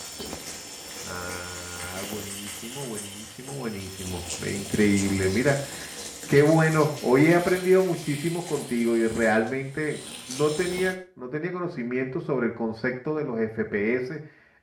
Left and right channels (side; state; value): both; identical; correlation 1.00